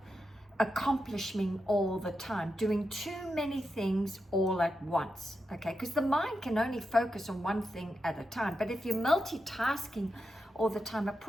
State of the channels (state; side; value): normal; both; correlation 0.87